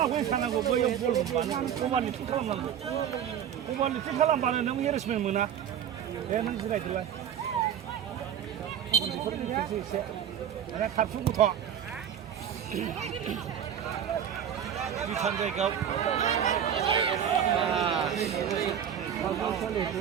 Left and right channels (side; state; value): left; quieter; 9.1 dB